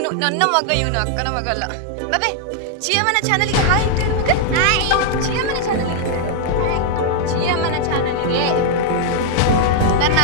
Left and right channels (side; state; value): both; different; correlation -0.01